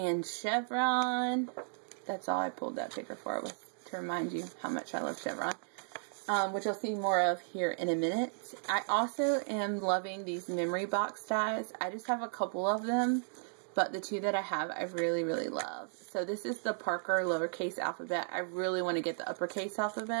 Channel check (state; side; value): silent; left; digital silence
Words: chevron, that's all I pulled that paper for, was to remind you how much I love chevron, which you'll see more of here in a minute. I also am loving these memory box dies. I just have a couple of them, but the two that I have, I really, really love. So this is the Parker lowercase alphabet. I really want to get the uppercase